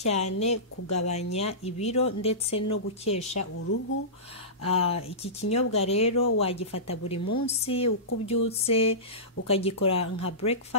kugabanya ibiro ndetse no gukesha uruhu. Iki kinyobwa rero wagifata buri munsi uko ubyutse ukagikora nka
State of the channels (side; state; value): both; normal; correlation -0.20